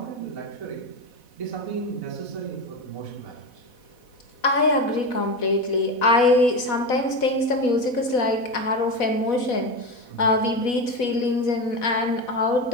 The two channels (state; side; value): late; right; 4.1 ms